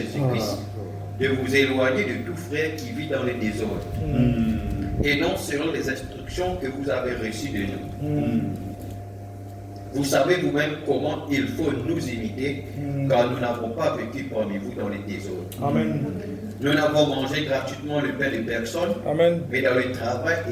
de vous éloigner de tout frère qui vit dans le désordre, et non selon les instructions que vous avez reçues de nous. Vous savez vous-même comment il faut nous imiter, car nous n'avons pas vécu parmi vous dans les désordres. Amen. Nous n'avons mangé gratuitement le pain de personne, Amen. mais dans le travail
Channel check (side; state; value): both; identical; correlation 1.00